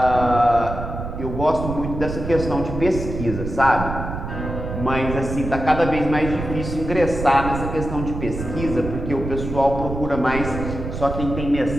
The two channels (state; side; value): noise; right; rumble, 6 dB below the sound